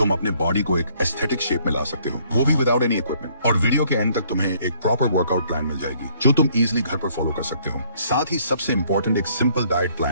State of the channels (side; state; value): both; inverted; correlation -0.64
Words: अपने बॉडी को एक एस्थेटिक शेप में ला सकते हो, वो भी विदाउट एनी इक्विपमेंट। और वीडियो के एंड तक तुम्हें एक प्रॉपर वर्कआउट प्लान मिल जाएगी, जो तुम इजिली घर पर फॉलो कर सकते हो। साथ ही सबसे इंपॉर्टेंट, एक सिंपल डाइट